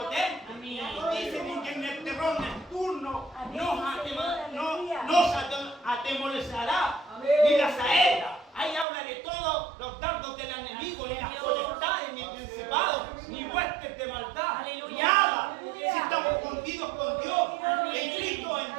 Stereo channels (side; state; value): left; drops out; at 8.8 s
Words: Dice que en el terror nocturno nos atemorizará ni la saeta. Ahí habla de todos los dardos del enemigo, ni las potestades, ni principados, ni huestes de maldad, nada. Si estamos escondidos con Dios, en Cristo, en